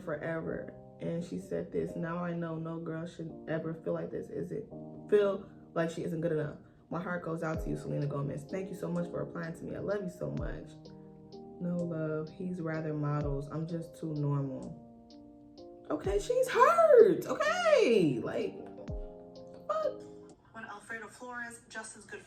forever. And she said this, now I know no girl should ever feel like this. Feel like she isn't good enough. My heart goes out to you, Selena Gomez. Thank you so much for replying to me. I love you so much. No love. He's rather models. I'm just too normal. Okay, she's hurt. Okay, like, what? When Alfredo Flores, Justin's good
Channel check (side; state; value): both; identical; correlation 1.00